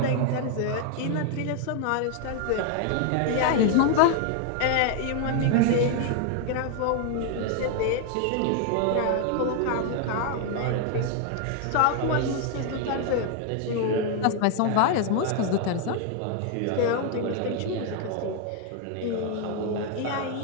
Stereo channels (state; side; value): different; both; correlation 0.00